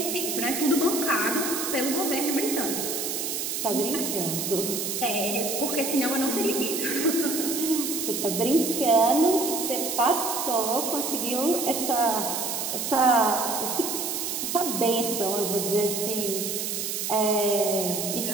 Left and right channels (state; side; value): noise; right; hiss, 2 dB below the sound